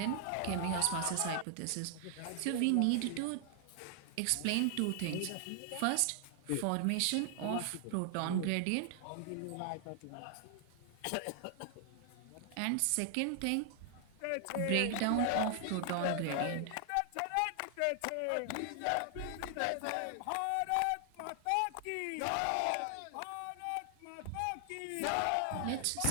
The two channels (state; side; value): different; both; correlation 0.00